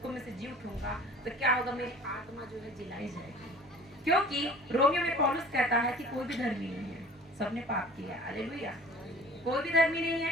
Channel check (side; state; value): both; normal; correlation 0.46